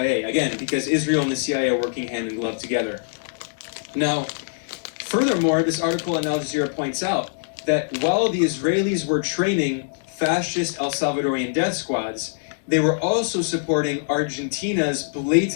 Again, because Israel and the CIA are working hand in glove together. Now, furthermore, this article in Al Jazeera points out that while the Israelis were training fascist El Salvadorian death squads, they were also supporting Argentina's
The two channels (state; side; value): silent; right; 63 dB below the other